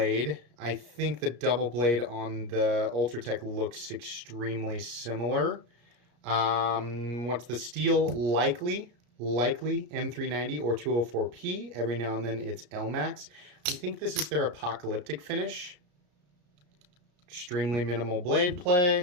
I think the double blade on the Ultratech looks extremely similar. What's the steel? Likely M390 or 204P. Every now and then it's LMAX. I think this is their apocalyptic finish. Extremely minimal blade play,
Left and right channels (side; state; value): left; late; 34 ms